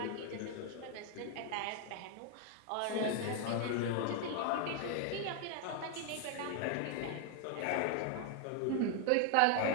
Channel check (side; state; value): both; different; correlation 0.01